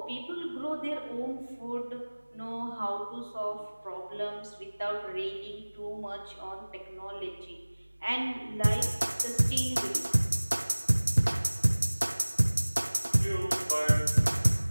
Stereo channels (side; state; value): both; inverted; correlation -1.00